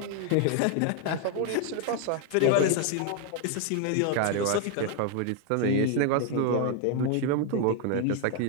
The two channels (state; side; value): different; both; correlation 0.00